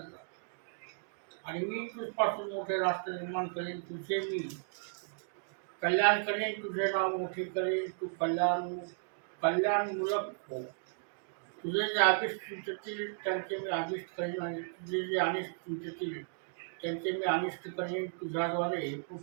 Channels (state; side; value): silent; left; digital silence